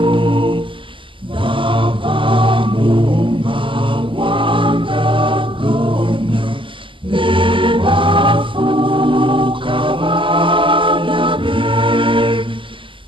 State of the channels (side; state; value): left; late; 0.25 ms